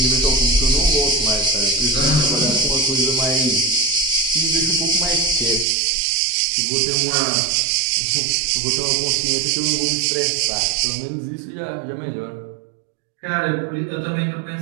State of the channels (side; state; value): left; drops out; at 5.7 s